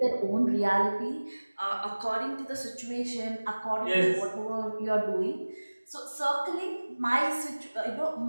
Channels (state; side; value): inverted; both; correlation -1.00